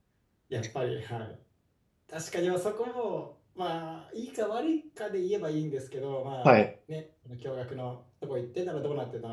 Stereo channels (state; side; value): identical; both; correlation 1.00